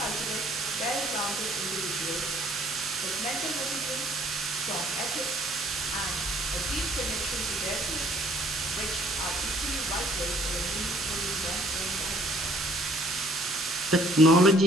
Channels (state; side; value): normal; both; correlation 0.60